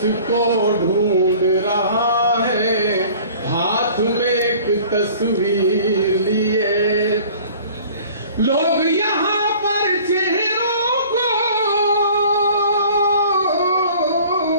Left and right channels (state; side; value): inverted; both; correlation -0.48